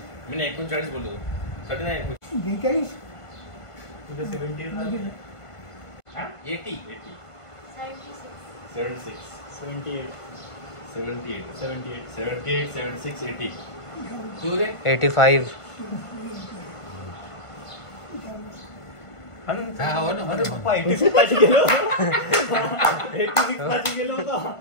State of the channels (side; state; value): right; late; 1.5 ms